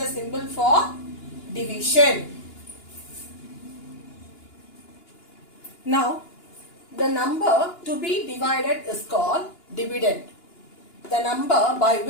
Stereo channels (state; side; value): late; right; 2.9 ms